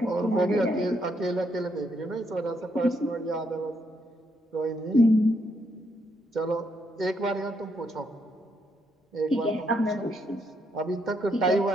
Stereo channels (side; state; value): both; normal; correlation 0.76